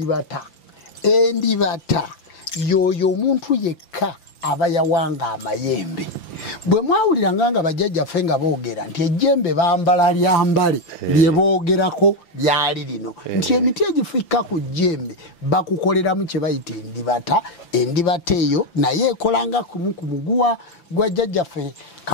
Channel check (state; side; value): late; right; 5.9 ms